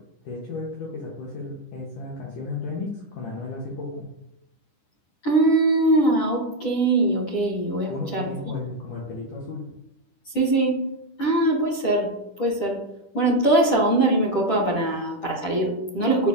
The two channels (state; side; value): late; right; 10 ms